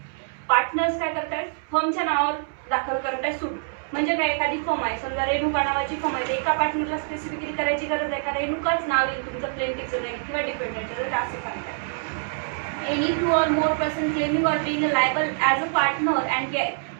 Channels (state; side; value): silent; left; 62 dB below the other